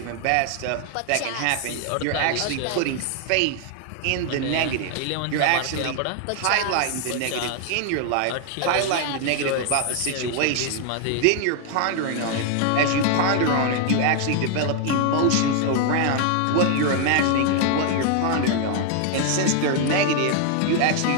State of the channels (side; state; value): both; different; correlation 0.00